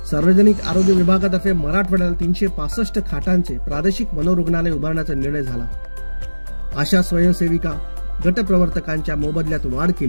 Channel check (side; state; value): both; inverted; correlation -1.00